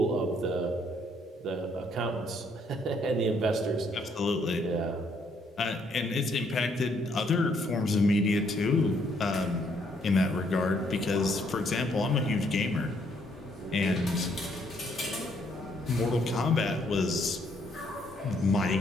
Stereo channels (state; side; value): normal; both; correlation 0.69